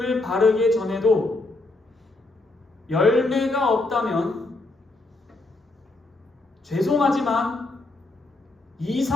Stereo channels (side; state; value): right; quieter; 3.0 dB